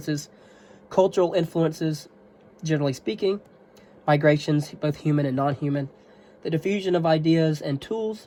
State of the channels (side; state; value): both; identical; correlation 1.00